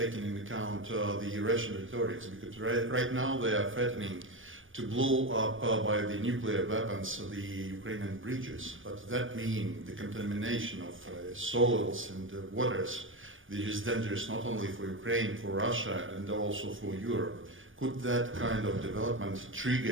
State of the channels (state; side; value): late; left; 0.57 ms